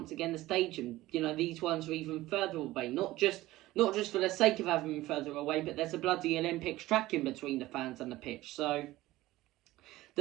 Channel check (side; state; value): left; quieter; 17.2 dB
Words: again the stadium. You know, these ones are even further away, not just for the sake of having them further away, but there's a bloody Olympics track in between the fans and the pitch. So